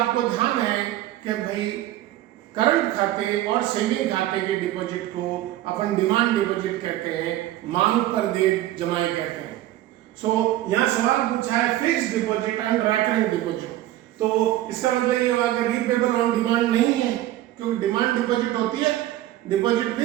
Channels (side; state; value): left; quieter; 14.5 dB